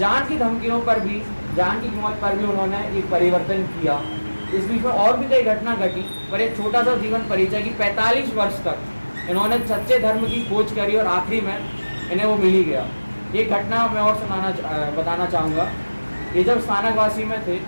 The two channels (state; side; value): inverted; both; correlation -1.00